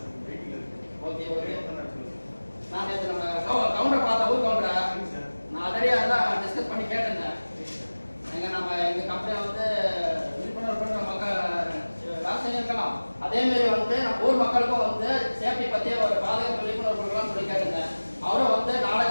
வெயிட்டிங்ல இருக்கு. Okay okay. நான் நேத்து நம்ம கவுண்டர் பார்த்த ஊர் கவுண்டர். நான் ஆல்ரெடி அதான் டிஸ்கஸ் பண்ணி கேட்டேன். எங்க நம்ம எங்க கம்பெனி வந்து விழிப்புணர்வு பண்ற மக்கள் வேலை செஞ்சிருக்கலாம். அதே மாதிரி வந்து நம்ம ஊர் மக்களுக்கும் வந்து சேஃப்டி பத்தி ஒரு பாதுகாப்பு விழிப்புணர்வு கொடுக்கலாம் சொல்லி கேட்டேன். அவரும் வந்து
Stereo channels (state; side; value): inverted; both; correlation -1.00